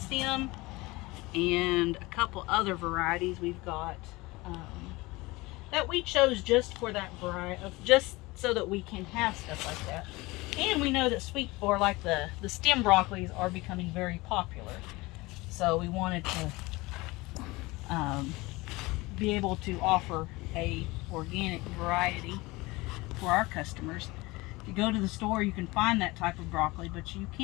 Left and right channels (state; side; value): quieter; right; 22.1 dB